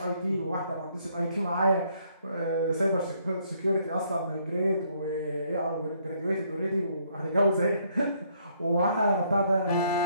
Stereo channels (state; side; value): inverted; both; correlation -0.68